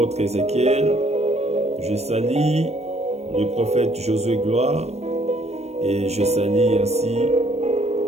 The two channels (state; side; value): late; left; 0.31 ms